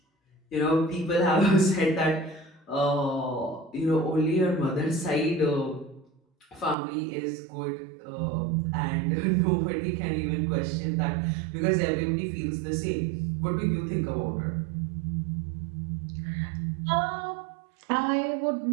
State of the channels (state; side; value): drops out; left; at 6.8 s